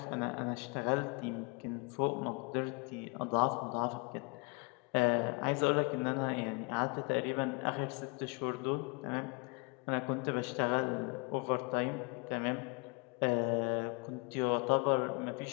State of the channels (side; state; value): right; quieter; 31.2 dB